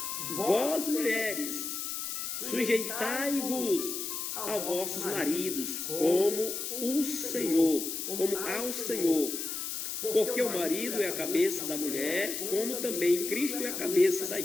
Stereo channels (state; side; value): noise; left; hiss, 4 dB below the sound